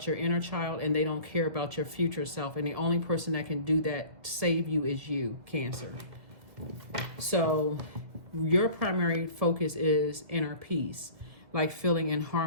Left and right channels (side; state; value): left; late; 1.9 ms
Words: your inner child and they don't care about your future self. And the only person that can do that, save you, is you, Cancer. So your primary focus is inner peace, like feeling in